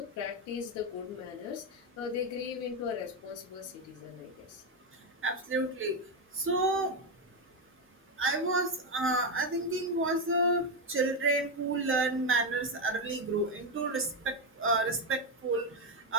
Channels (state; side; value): normal; both; correlation 0.07